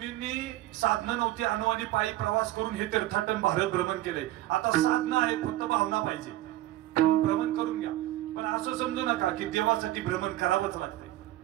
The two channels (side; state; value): left; quieter; 15.7 dB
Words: साधना नव्हती, अनुवानी पायी प्रवास करून हे तीर्थाटन भारत भ्रमण केले. आता साधना आहे, फक्त भावना पाहिजे, भ्रमण करून घ्या. पण असं समजू नका की देवासाठी भ्रमण करावंच लागते